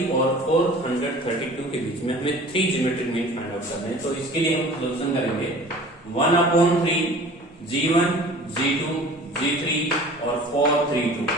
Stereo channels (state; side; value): normal; both; correlation 0.44